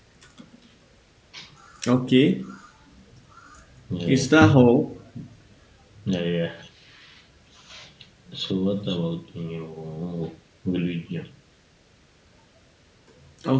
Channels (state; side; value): identical; both; correlation 1.00